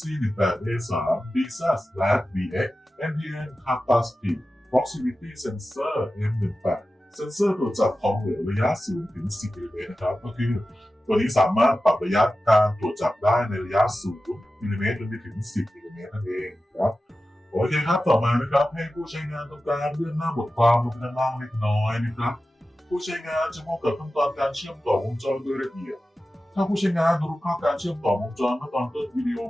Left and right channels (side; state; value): both; normal; correlation 0.94